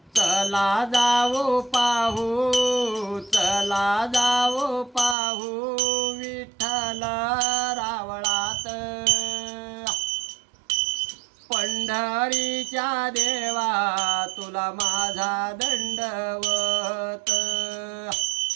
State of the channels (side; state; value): left; drops out; at 5.2 s